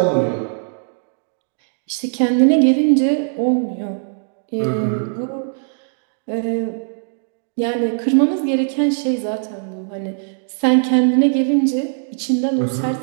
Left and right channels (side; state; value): left; silent; digital silence